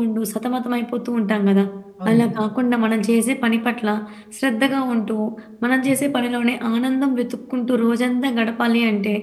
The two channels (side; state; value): both; identical; correlation 1.00